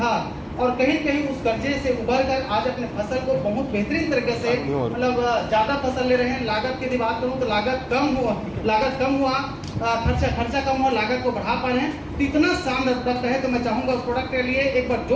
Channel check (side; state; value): both; identical; correlation 1.00